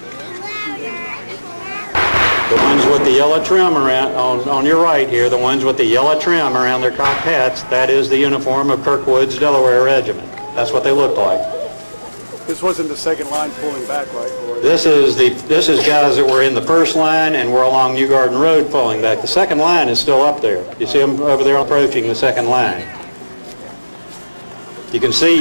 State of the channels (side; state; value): both; inverted; correlation -1.00